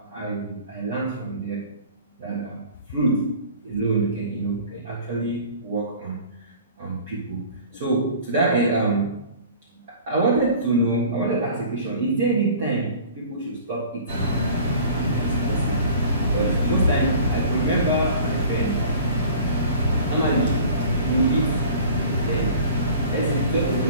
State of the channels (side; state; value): both; inverted; correlation -0.45